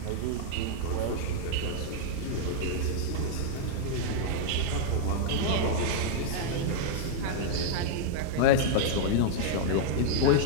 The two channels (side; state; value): both; different; correlation -0.01